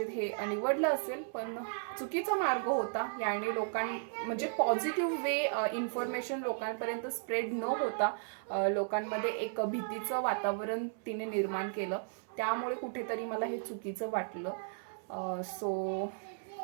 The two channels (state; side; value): silent; left; 54 dB below the other